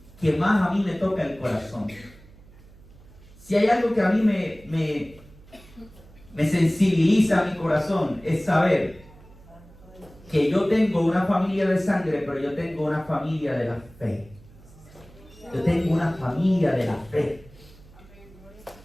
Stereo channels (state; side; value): noise; right; hum, 23 dB below the sound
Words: que más a mí me toca el corazón. Si hay algo que a mí me sensibiliza mi corazón, es saber que yo tengo una familia de sangre, pero yo tengo una familia de la fe. Yo tengo una familia de la fe.